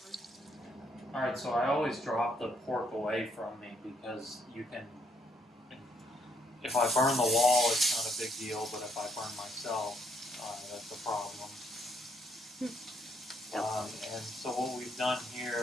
Alright, so I always drop the pork away from me because you can, if I burn the wall, it's not a big deal, but if I burn myself, that's a problem. And so what we've done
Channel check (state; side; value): normal; both; correlation 0.72